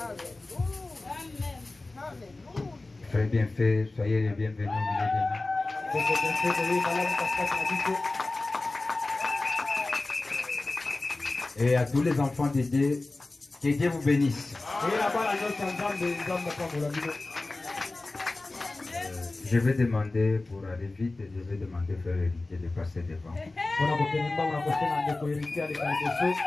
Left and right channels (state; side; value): quieter; right; 3.1 dB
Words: Frère bien fait, soyez les bienvenus au milieu de nous. Et à tous les enfants de Dieu, que Dieu vous bénisse. Je vais demander, pour aller vite, je vais demander au frère héritier de passer devant.